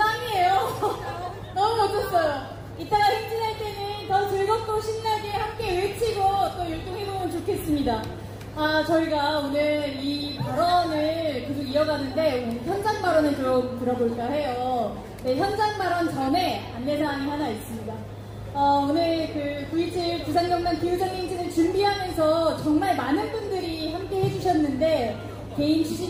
너무 멋졌어요. 이따가 행진할 때는 더 즐겁고 신나게 함께 외치고 또 율동해보면 좋겠습니다. 아, 저희가 오늘 이 발언을 계속 이어가는데 오늘 현장 발언을 좀 들어볼까 해요. 네, 현장 발언 전에 안내사항이 하나 있습니다. 오늘 그 9.27 부산경남 기후정행진을 준비하면서 정말 많은 분들이 함께 해주셨는데 개인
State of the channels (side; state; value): both; identical; correlation 1.00